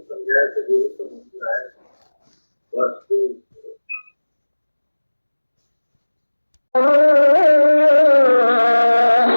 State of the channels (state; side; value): inverted; both; correlation -1.00